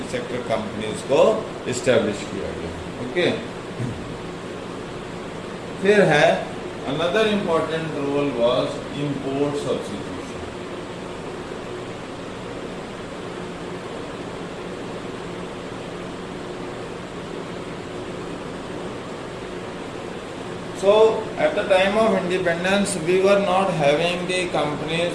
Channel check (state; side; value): identical; both; correlation 1.00